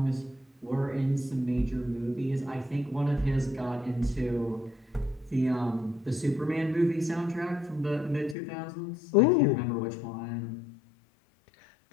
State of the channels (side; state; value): right; drops out; at 8.3 s